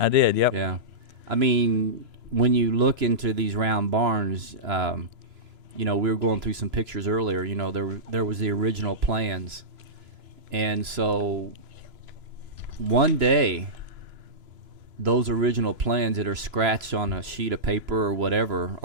Yeah. I mean, when you look into these round barns, you know, we were going through some pictures earlier. You know, there was the original plans, and so one day, those original plans that are scratched on a sheet of paper or whatever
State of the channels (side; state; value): left; late; 3.0 ms